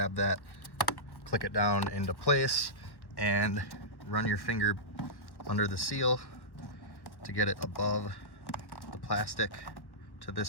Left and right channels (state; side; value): late; right; 1.1 ms